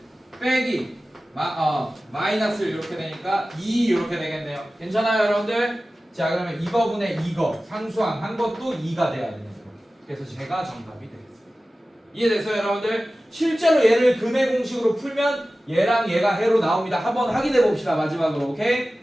빼기 마이너스 이렇게 되니까 2 이렇게 되겠네요. 괜찮아요 여러분들? 자 그러면 이거분의 이거 상수항 한 것도 2가 돼야 되는 거예요. 그래서 제가 정답이 되겠습니다. 이해됐어요 여러분들? 실제로 얘를 근의 공식으로 풀면 얘랑 얘가 해로 나옵니다. 한번 확인해 봅시다 마지막으로. 오케이?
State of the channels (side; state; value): both; normal; correlation 0.96